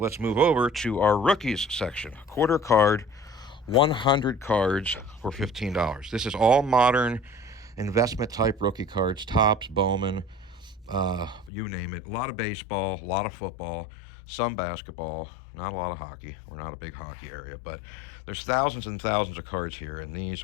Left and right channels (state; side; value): drops out; right; at 11.5 s